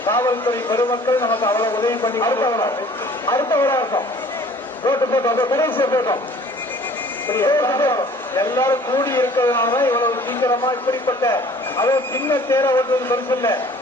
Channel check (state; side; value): normal; both; correlation 0.51